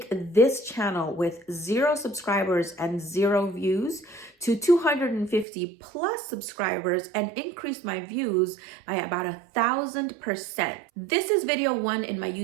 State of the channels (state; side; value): drops out; left; at 5.5 s